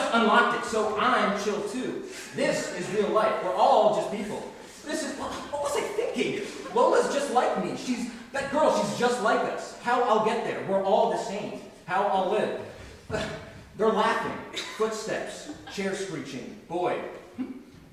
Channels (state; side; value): identical; both; correlation 1.00